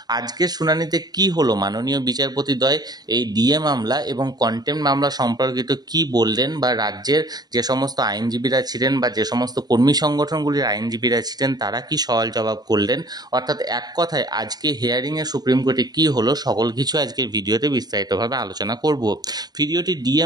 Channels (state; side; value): late; left; 0.19 ms